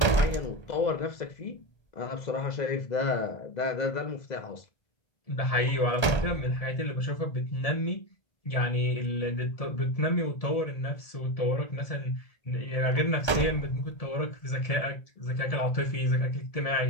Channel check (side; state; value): right; late; 1.2 ms